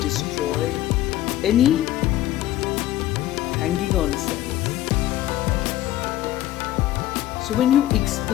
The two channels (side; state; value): right; quieter; 14.0 dB